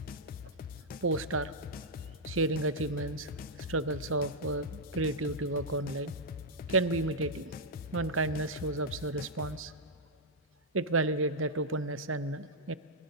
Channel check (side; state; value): both; normal; correlation -0.06